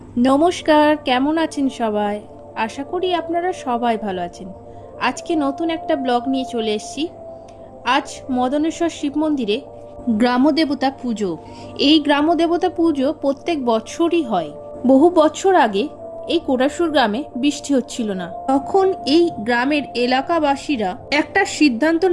নমস্কার, কেমন আছেন সবাই? আশা করি আপনারা সবাই ভালো আছেন। আজকে নতুন একটা ব্লগ নিয়ে চলে এসেছি। আজ মদনেশ্বর শিব মন্দিরে গ্রামদেবতা পুজো। এই গ্রামদেবতা পুজো প্রত্যেক বছরই হয়। বহু বছর আগে এই কোটাসুর গ্রামে বৃষ্টি হচ্ছিল না। তখন এই গ্রামের এলাকাবাসীরা একটা সিদ্ধান্ত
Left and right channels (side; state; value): both; identical; correlation 1.00